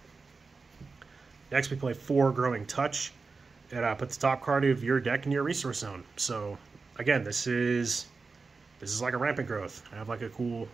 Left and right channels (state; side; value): quieter; left; 4.3 dB